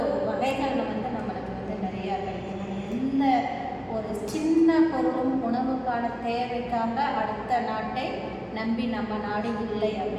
வகைகள் நம்மளுக்கு நிறையா கிடைக்கின்றன. எந்த ஒரு சின்ன பொருளும் உணவுக்கான தேவைக்காக அடுத்த நாட்டை நம்பி நம்ம நாடு இல்லை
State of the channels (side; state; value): both; identical; correlation 1.00